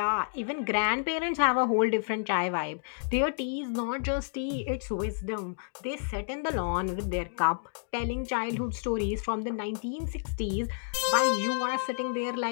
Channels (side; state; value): right; silent; digital silence